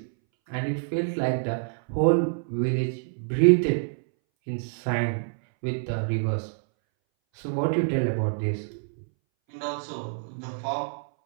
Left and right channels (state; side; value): silent; left; 60 dB below the other